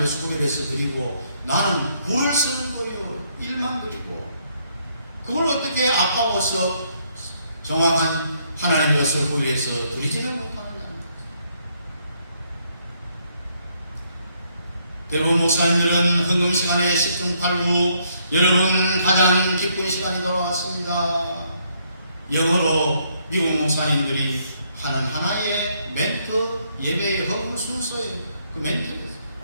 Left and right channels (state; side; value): inverted; both; correlation -0.71